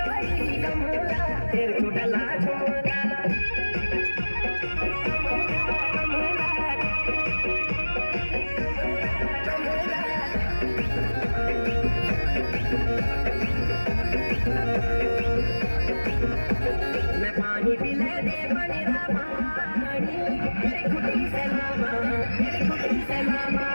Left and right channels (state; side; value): inverted; both; correlation -1.00